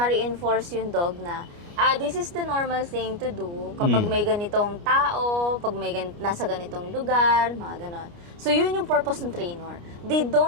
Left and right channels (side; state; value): left; late; 29 ms